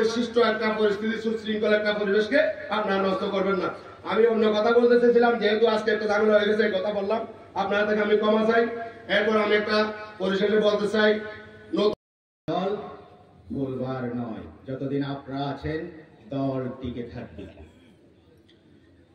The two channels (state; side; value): identical; both; correlation 1.00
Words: সৃষ্ট একটা পরিস্থিতি, সুশৃঙ্খল একটা পরিবেশকে আপনারা নষ্ট করবেন না। আমি অন্য কথা বলতে চেয়েছিলাম, যেহেতু আজকে একটা ঝামেলা হয়ে গেছে, কথা বললাম, আপনারা থেকে আমি ক্ষমা চাই। এরপর আমি একটা পরিশেষে বলতে চাই, দল ভুলবার নয়, যতদিন আপনারা আছেন দল টিকে থাকবে।